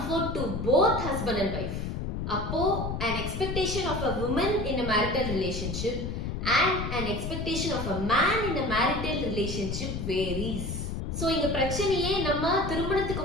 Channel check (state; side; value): noise; left; rumble, 4 dB below the sound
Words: to both husband and wife. Appo an expectation of a woman in a marital relationship and an expectation of a man in a marital relationship varies. So இங்க பிரச்சனையே நம்ம